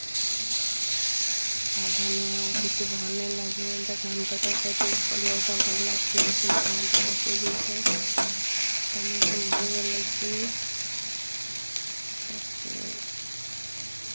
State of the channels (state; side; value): inverted; both; correlation -1.00